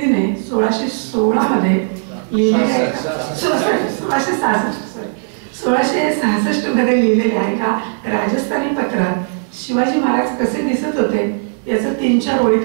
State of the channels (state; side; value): silent; left; 68 dB below the other